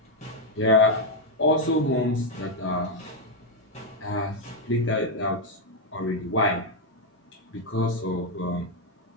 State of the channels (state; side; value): normal; both; correlation 0.02